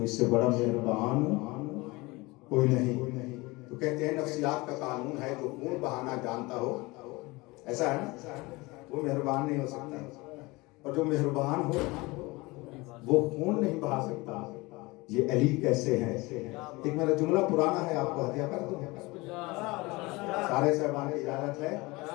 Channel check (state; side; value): quieter; right; 23.1 dB